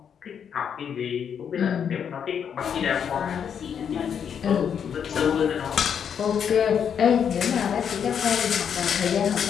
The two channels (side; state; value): right; quieter; 7.8 dB